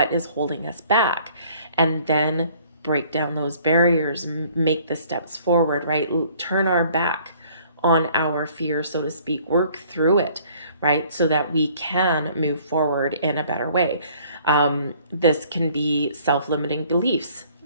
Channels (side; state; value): both; inverted; correlation -0.57